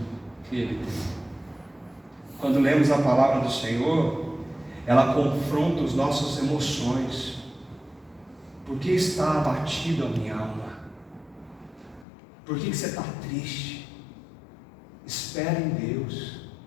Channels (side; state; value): right; drops out; at 12.1 s